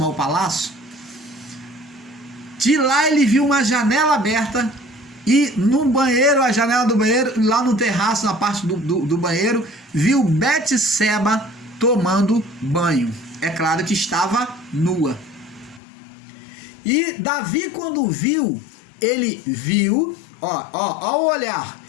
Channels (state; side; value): drops out; right; at 15.8 s